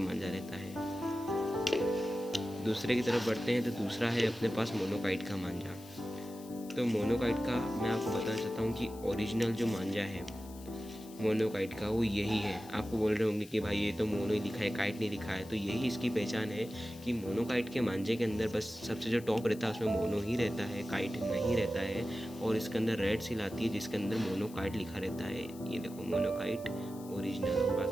मांझा रहता है। दूसरे की तरफ बढ़ते हैं तो दूसरा है अपने पास मोनोकाइट का मांझा। तो मोनोकाइट का मैं आपको बताना चाहता हूँ कि ओरिजिनल जो मांझा है मोनोकाइट का वो यही है। आपको बोल रहे होंगे कि भाई ये तो मोनो ही लिखा है, काइट नहीं लिखा है। तो यही इसकी पहचान है कि मोनोकाइट के मांझे के अंदर बस सबसे जो टॉप रहता है उसमें मोनो ही रहता है, काइट नहीं रहता है। और इसके अंदर रेड सील आती है जिसके अंदर मोनोकाइट लिखा रहता है। ये देखो मोनोकाइट ओरिजिनल और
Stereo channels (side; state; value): left; noise; hiss, 20 dB below the sound